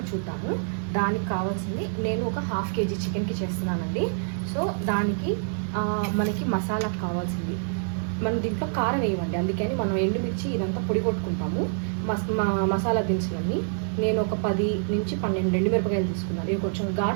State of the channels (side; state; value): left; silent; digital silence